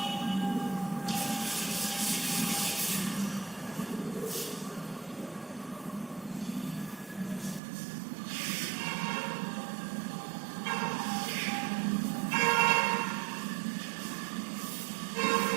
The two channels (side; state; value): left; drops out; at 7.6 s